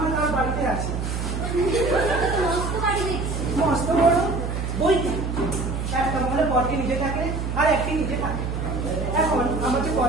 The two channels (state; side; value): noise; right; hum, 3 dB below the sound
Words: তার বাড়িতে আছে, মস্ত বড় বইটি একটা মহলে বরকে নিজে থাকে আর একটি নিজে থাকে। এখন আমার যে